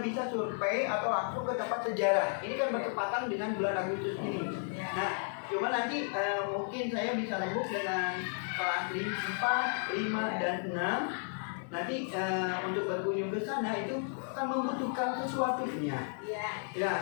bisa survei atau langsung ke tempat sejarah. Ini kan bertepatan dengan bulan Agustus ini. Nah, cuma nanti mungkin saya bisa rembuk dengan kelas 4, 5, dan 6. Nanti untuk berkunjung ke sana itu akan membutuhkan sesuatunya. Ya,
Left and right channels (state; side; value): silent; right; 55 dB below the other